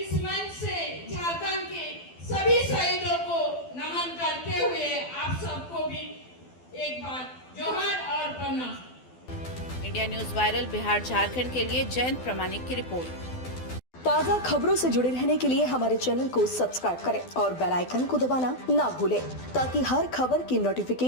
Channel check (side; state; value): right; late; 12 ms